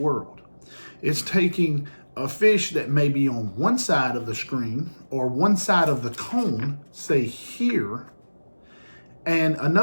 It's taking a fish that may be on one side of the screen or one side of the cone, say here, and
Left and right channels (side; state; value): both; inverted; correlation -1.00